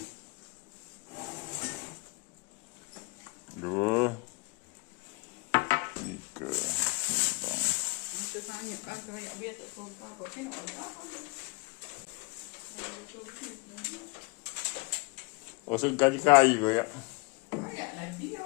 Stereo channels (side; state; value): right; quieter; 30.7 dB